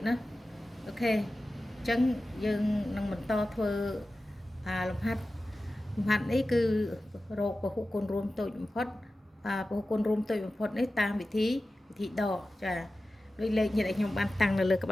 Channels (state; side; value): normal; both; correlation 0.94